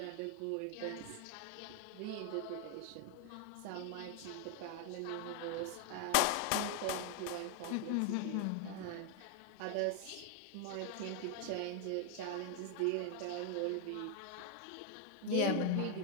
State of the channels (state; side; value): different; both; correlation 0.00